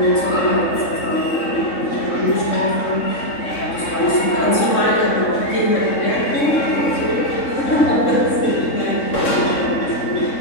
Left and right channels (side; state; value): right; late; 3.6 ms